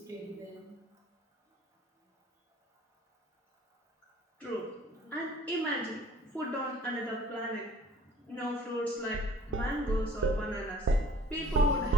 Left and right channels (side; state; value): both; normal; correlation 0.54